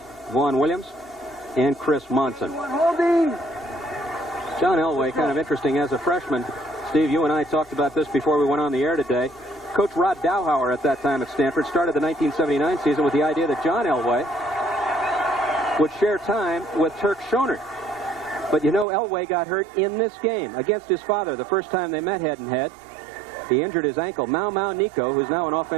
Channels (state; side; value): drops out; left; at 18.9 s